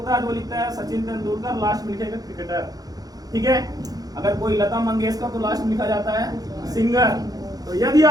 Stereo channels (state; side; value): late; left; 0.18 ms